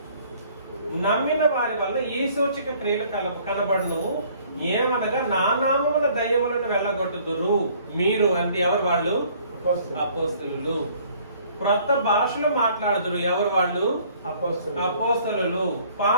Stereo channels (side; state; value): both; inverted; correlation -0.58